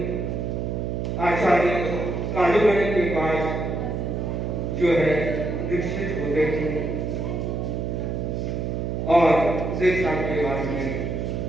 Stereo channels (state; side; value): noise; right; hum, 2 dB below the sound